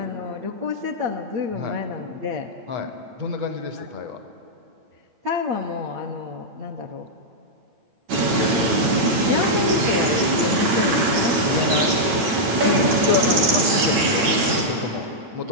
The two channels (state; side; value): late; left; 9.6 ms